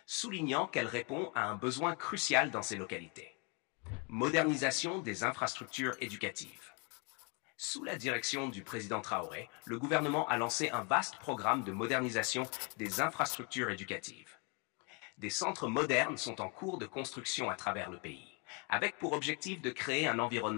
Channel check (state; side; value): quieter; right; 33.6 dB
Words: soulignant qu'elle répond à un besoin crucial dans ces localités. Modernisation des infrastructures éducatives. Sous la direction du président Traoré, le gouvernement a lancé un vaste programme de modernisation des infrastructures éducatives. Des centres modernes sont en cours de construction à travers le pays, avec pour objectif de créer un